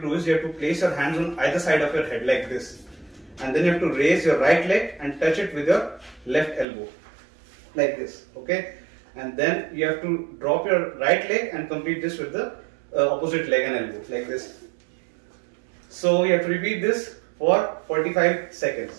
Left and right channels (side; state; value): left; drops out; at 6.7 s